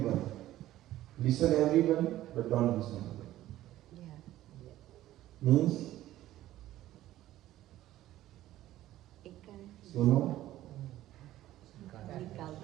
listen everyone, but don't listen. Means, suno.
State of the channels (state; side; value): quieter; left; 14.4 dB